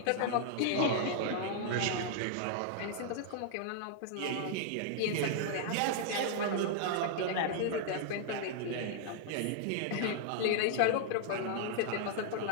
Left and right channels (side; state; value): both; different; correlation -0.01